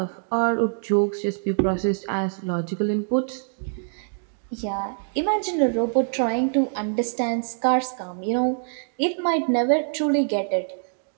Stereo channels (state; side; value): silent; left; digital silence